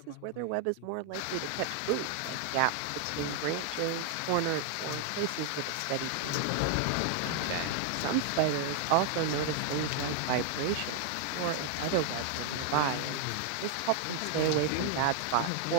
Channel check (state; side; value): different; both; correlation 0.00